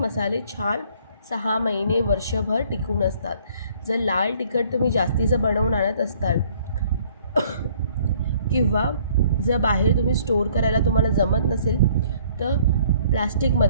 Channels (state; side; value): inverted; both; correlation -0.59